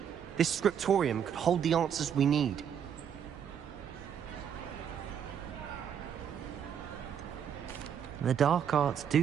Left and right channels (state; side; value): quieter; left; 8.4 dB